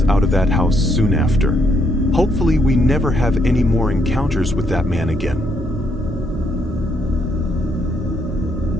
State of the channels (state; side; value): normal; both; correlation 0.73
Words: out of that house soon after. Hopefully, we never have any more encounters with that man again.